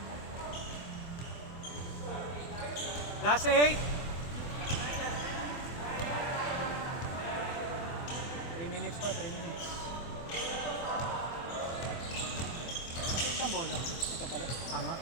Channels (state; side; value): late; right; 24 ms